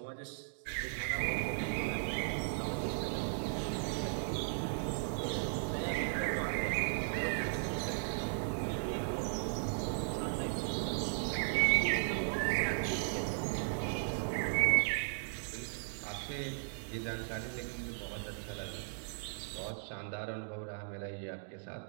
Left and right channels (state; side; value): silent; left; digital silence